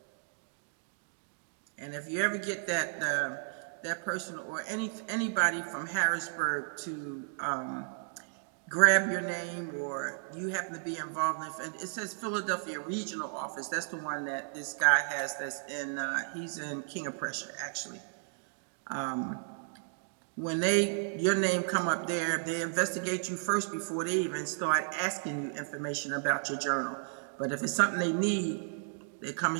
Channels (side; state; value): left; silent; digital silence